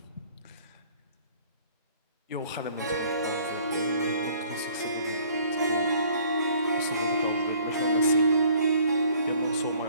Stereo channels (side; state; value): both; inverted; correlation -0.57